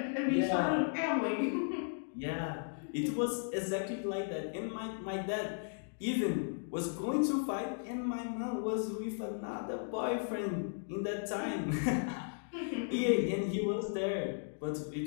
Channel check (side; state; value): right; silent; digital silence